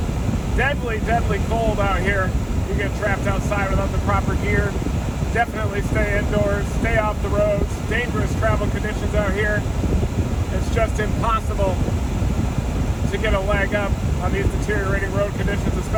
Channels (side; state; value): right; noise; hiss, 29 dB below the sound